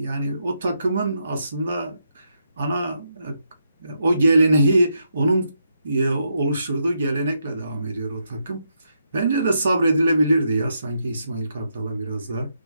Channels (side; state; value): both; inverted; correlation -0.81